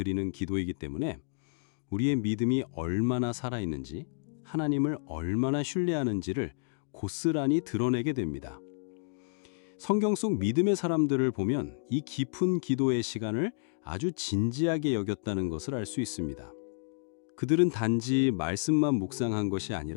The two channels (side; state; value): right; silent; digital silence